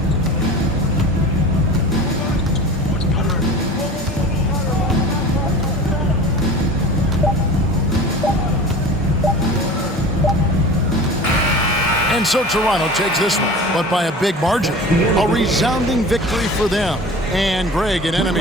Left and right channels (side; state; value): both; normal; correlation 0.37